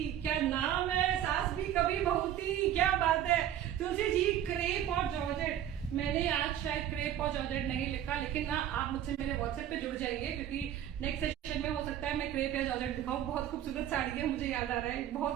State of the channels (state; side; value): quieter; left; 11.1 dB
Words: क्या नाम है, सास भी कभी बहू थी, क्या बात है। तुलसी जी, क्रेप और जॉर्जेट, मैंने आज शायद क्रेप और जॉर्जेट नहीं लिखा, लेकिन ना आप मुझसे मेरे व्हाट्सएप पे जुड़ जाइए, क्योंकि नेक्स्ट सेशन में हो सकता है मैं क्रेप या जॉर्जेट दिखाऊं। बहुत खूबसूरत साड़ी है, मुझे याद आ रहा है,